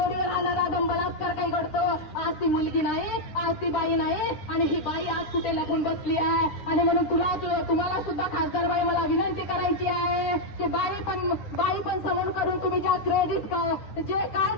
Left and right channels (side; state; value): right; late; 9.7 ms